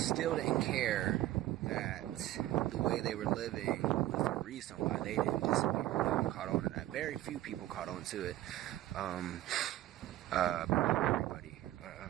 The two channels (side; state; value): left; quieter; 14.8 dB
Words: didn't care that the way they were living was the reason why they didn't disappear. They caught on to that. Very few people caught on to it. But not everybody.